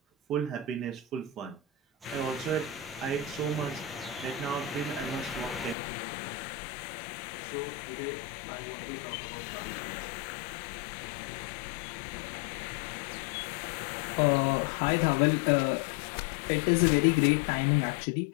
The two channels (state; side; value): drops out; right; at 5.8 s